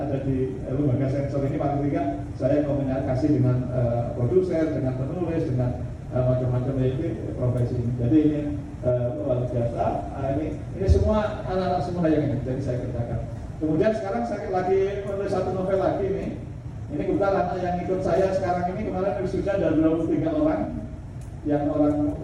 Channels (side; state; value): both; identical; correlation 1.00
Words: di lembaga sensor ini, paling tidak saya komunikasi dengan produser, dengan penulis, dengan macam-macam ini profesi ini. Jadi ini luar biasa. Ini semua anak-anak semua yang ini, jadi saya kerjakan. Kemudian sekarang saya lagi menulis satu novel lagi nih. Ini kebetulan anak yang ikut saya sekarang ini kemarin sudah ada 23 orang. Yang orang